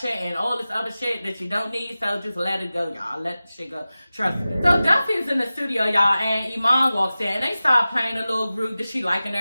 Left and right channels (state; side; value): inverted; both; correlation -0.96